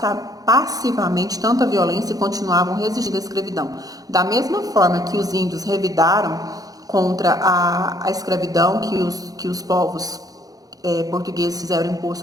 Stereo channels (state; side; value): late; left; 0.18 ms